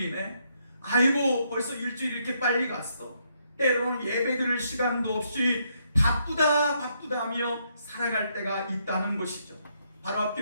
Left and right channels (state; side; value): inverted; both; correlation -0.75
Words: 아이고 벌써 일주일이 이렇게 빨리 갔어, 때로는 예배 드릴 시간도 없이 바쁘다 하며 살아갈 때가 있다는 것이죠. 바로